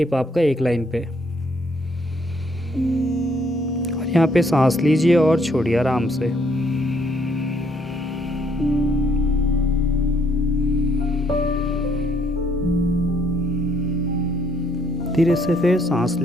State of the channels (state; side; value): normal; both; correlation 0.69